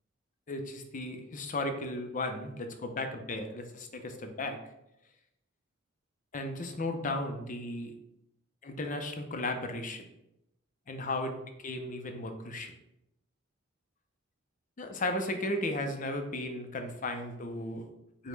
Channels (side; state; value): both; normal; correlation 0.18